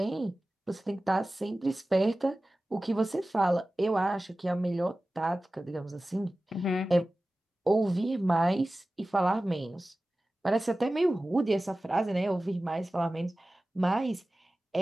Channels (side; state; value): both; normal; correlation 0.96